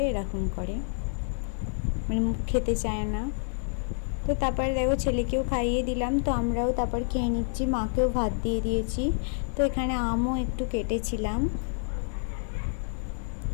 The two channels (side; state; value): right; silent; 59 dB below the other